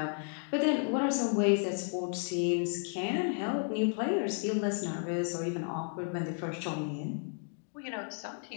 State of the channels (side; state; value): right; silent; 56 dB below the other